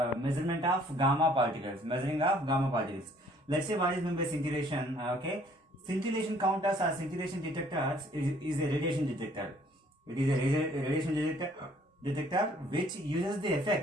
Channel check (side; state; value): both; normal; correlation 0.59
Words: measurement of gamma particles. Let's say what is meant by scintillation. Scintillation counters or scintillation detectors is a radiation detector. It is a radiation detector which uses the